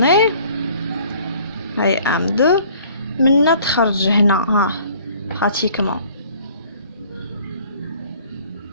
هاي M2 منا تخرج هنا ها pratiquement.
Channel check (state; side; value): inverted; both; correlation -0.54